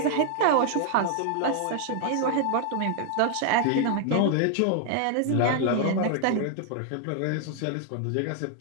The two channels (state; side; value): different; both; correlation 0.00